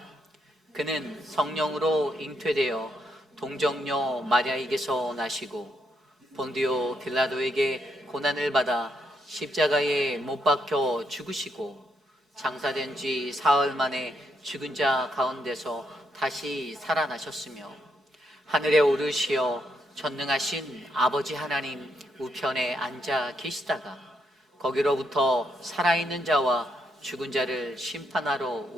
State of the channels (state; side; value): normal; both; correlation 0.77